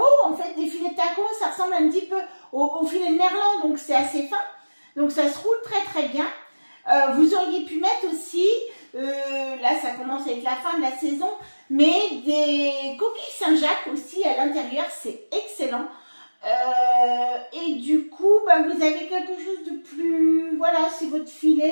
En fait, des filets de taco, ça ressemble un petit peu au filet de merlan, donc c'est assez fin. Donc ça se roule très très bien. Vous auriez pu mettre aussi, là ça commence à être la fin de la saison, mais des coquilles Saint-Jacques aussi à l'intérieur, c'est excellent. Et du coup, vous avez quelque chose de plus, voilà, c'est votre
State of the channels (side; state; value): both; inverted; correlation -1.00